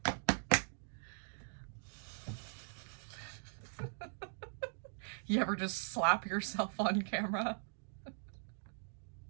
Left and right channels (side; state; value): left; silent; digital silence